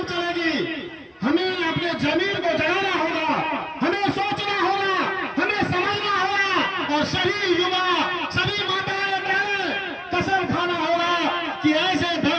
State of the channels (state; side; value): identical; both; correlation 1.00